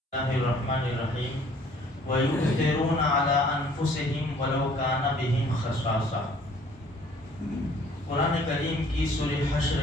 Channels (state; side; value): normal; both; correlation 0.57